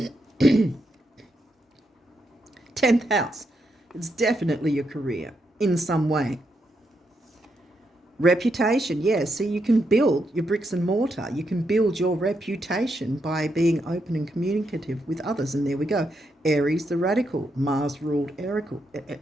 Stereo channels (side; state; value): both; normal; correlation 0.81